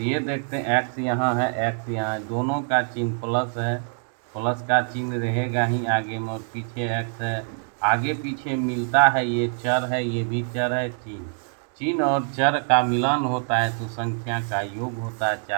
देखते हैं x यहाँ है, x यहाँ है, दोनों का चिन्ह प्लस है, प्लस का चिन्ह रहेगा ही आगे में, और पीछे x है, आगे पीछे मिलता है, ये चर है, ये भी चर है। चिन्ह और चर का मिलान होता है तो संख्या का योग होता है।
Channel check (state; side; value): silent; left; 62 dB below the other